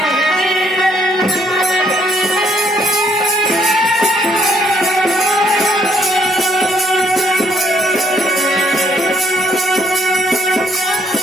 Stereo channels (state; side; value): normal; both; correlation 0.69